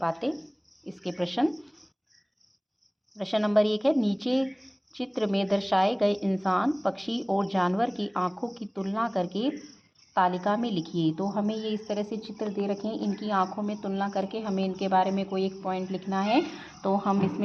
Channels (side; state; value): both; identical; correlation 1.00